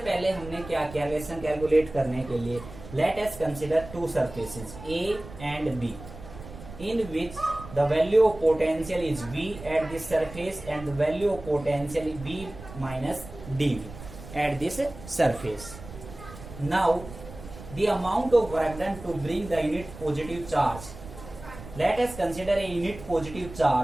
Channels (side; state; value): right; noise; rumble, 15 dB below the sound